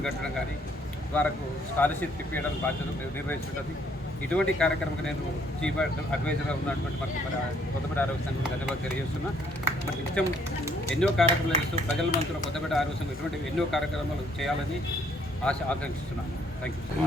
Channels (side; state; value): both; normal; correlation 0.66